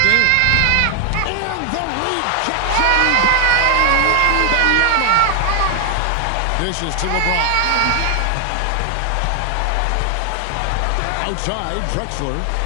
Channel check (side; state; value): both; different; correlation 0.00